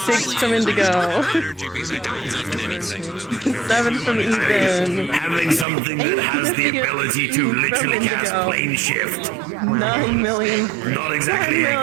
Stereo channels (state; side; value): drops out; left; at 5.7 s